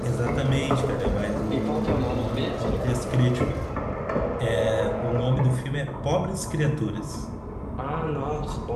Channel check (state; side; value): identical; both; correlation 1.00